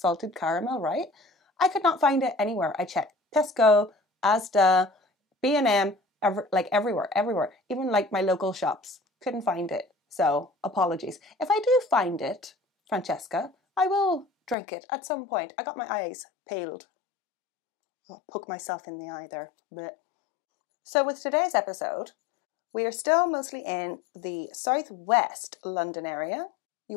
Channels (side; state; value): right; drops out; at 14.6 s